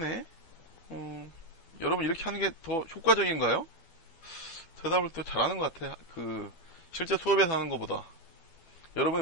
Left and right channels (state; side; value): late; right; 12 ms